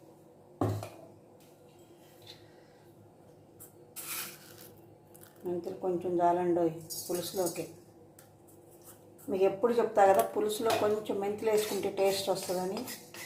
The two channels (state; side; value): identical; both; correlation 1.00